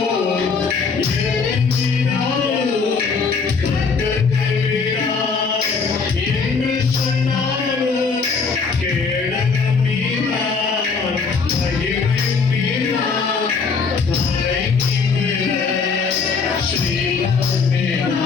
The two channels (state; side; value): quieter; right; 5.0 dB